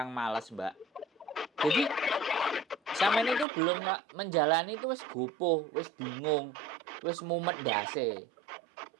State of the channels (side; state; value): left; drops out; at 3.5 s